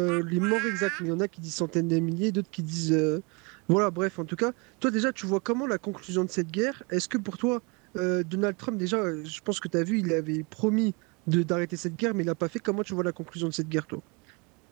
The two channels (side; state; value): left; quieter; 30.2 dB